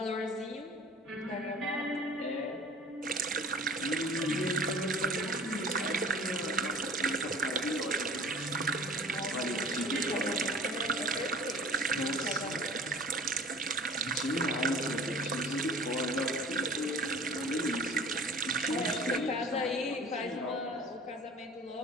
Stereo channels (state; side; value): normal; both; correlation 0.44